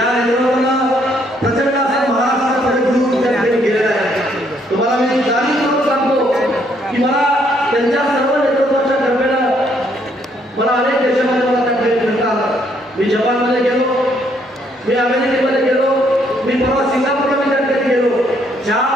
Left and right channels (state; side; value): normal; both; correlation 0.69